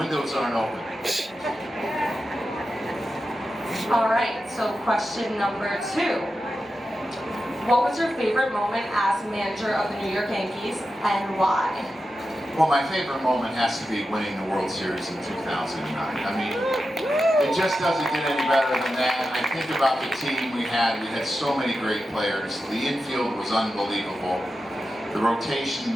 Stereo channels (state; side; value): normal; both; correlation 0.91